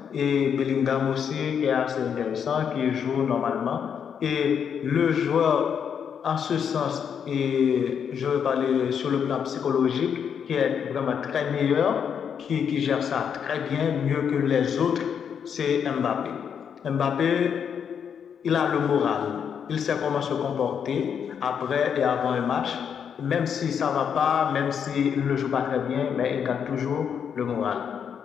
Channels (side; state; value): right; quieter; 7.6 dB